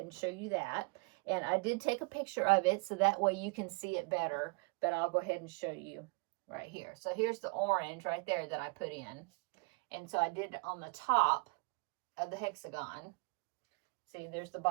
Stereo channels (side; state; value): left; quieter; 30.9 dB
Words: and show you that. And I did take a picture of it so that way you can see it better, but I'll go ahead and show you right here. So here's the orange right there that I put in. And so I did it on the top of the hexagon. See, there's the